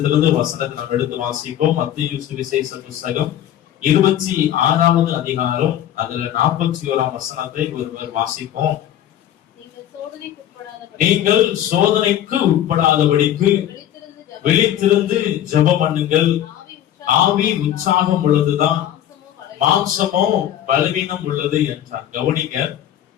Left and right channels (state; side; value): quieter; right; 11.3 dB